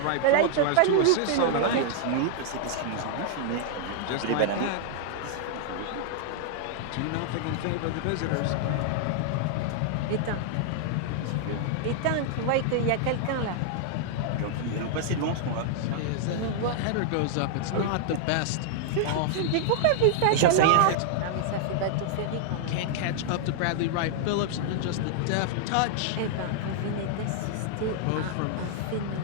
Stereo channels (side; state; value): both; different; correlation -0.01